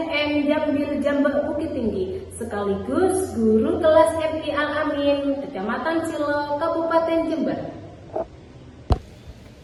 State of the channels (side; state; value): both; identical; correlation 1.00